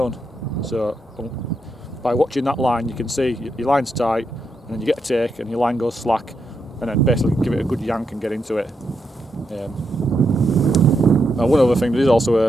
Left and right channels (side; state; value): both; normal; correlation 0.82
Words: So by watching that line, you can see your line's tight, and then you get a take and your line goes slack, and then basically give it a good yank and get into it. Now one other thing, there is